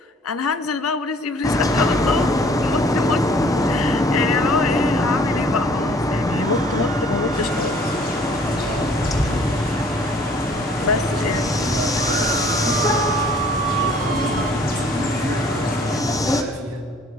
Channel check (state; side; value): normal; both; correlation 0.56